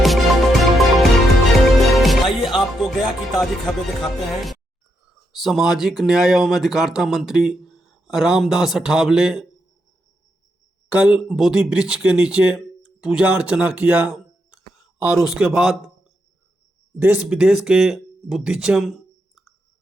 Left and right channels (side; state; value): both; normal; correlation 0.81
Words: आइए आपको गया की ताजी खबरें दिखाते हैं। सामाजिक न्याय एवं अधिकारिता मंत्री रामदास अठावले कल बोधि वृक्ष के नीचे पूजा अर्चना किया और उसके बाद देश विदेश के बुद्धिज्म